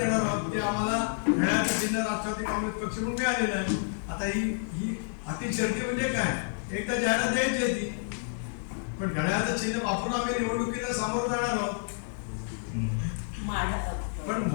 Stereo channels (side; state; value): right; silent; digital silence